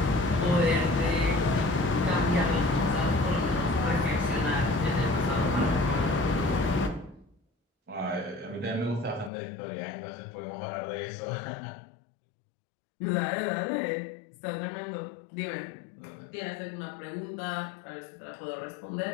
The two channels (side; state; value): right; drops out; at 9.3 s